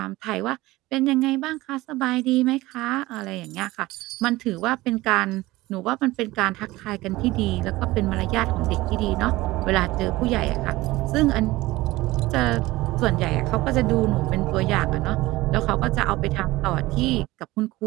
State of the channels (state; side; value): quieter; left; 19.0 dB